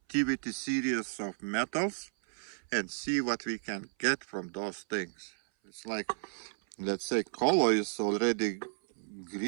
series of metals and see what we can get from those things. It's like, let's say color is already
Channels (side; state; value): left; silent; 56 dB below the other